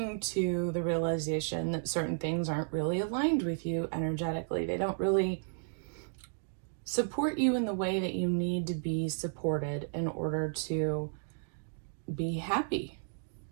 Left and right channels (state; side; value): silent; left; digital silence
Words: to the realization that certain things aren't really aligned with you energetically. They don't really support you in the way that you need to be supported in order to be happy,